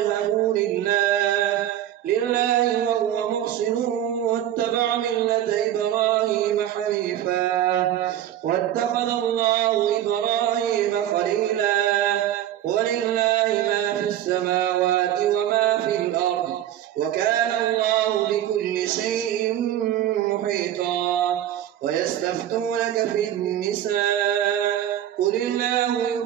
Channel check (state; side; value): quieter; left; 11.8 dB